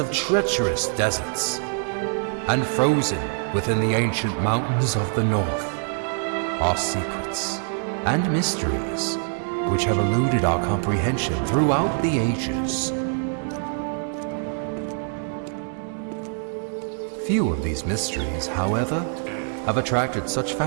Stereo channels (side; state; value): left; silent; 57 dB below the other